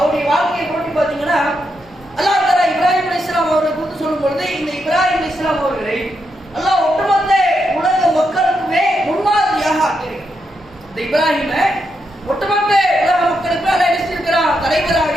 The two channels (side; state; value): both; normal; correlation 0.82